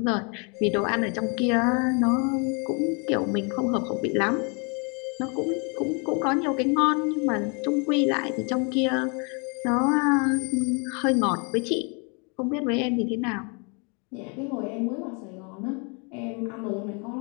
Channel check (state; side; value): quieter; right; 34.6 dB